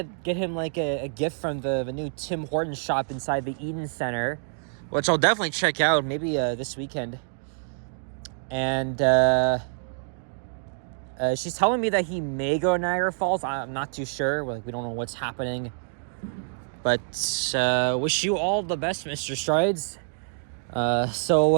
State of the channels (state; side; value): silent; left; digital silence